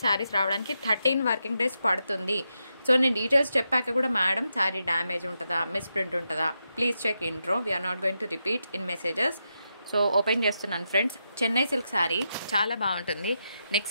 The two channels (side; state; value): both; inverted; correlation -0.85